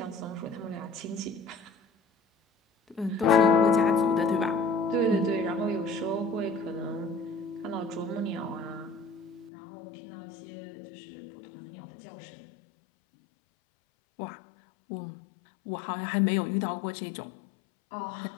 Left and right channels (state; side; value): drops out; right; at 9.5 s